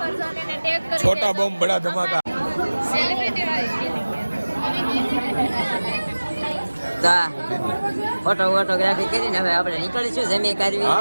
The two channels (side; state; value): both; inverted; correlation -1.00